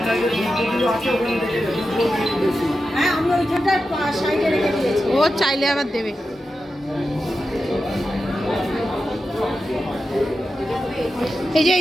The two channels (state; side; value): normal; both; correlation 0.90